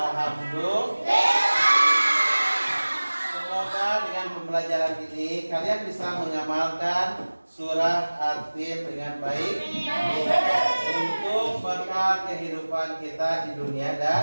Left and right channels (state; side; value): inverted; both; correlation -1.00